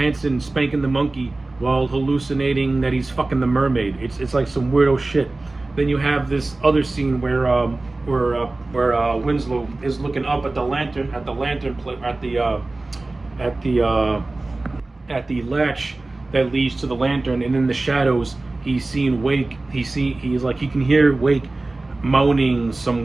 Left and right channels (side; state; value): left; quieter; 3.1 dB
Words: spanking the monkey while hallucinating that he's fucking the mermaid. It's like some weirdo shit. Then you have this other scene where Winslow is looking up at the latch that leads to the lantern, and in the shadows he's seeing Wake. He can hear Wake moaning some